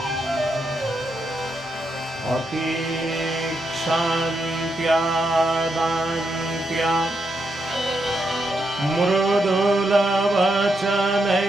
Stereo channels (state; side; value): normal; both; correlation 0.82